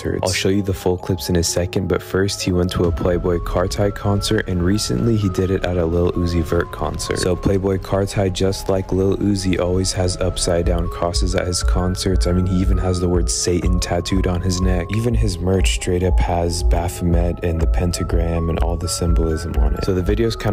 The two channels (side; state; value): both; identical; correlation 1.00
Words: I'll show you the full clips in a second, but first he went to a Playboi Carti concert, and recently he did it at a Lil Uzi Vert concert. So Playboi Carti, just like Lil Uzi, always has upside down crosses at his concerts. I mean, he even has the word Satan tattooed on his neck. Even his merch straight up has Baphomet and the pentagram and all the symbolism on it. So the video is